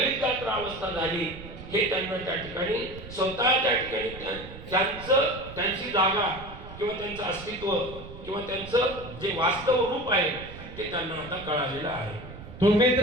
गात्र अवस्था झाली. हे त्यांना त्या ठिकाणी स्वतः त्या ठिकाणी त्यांची जागा किंवा त्यांचं अस्तित्व किंवा त्यांचं जे वास्तव रूप आहे ते त्यांना आता कळालेलं आहे. तुम्ही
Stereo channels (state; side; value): noise; right; rumble, 14 dB below the sound